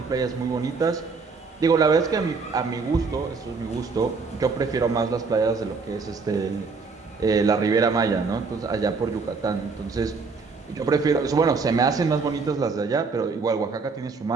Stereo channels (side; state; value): left; quieter; 4.6 dB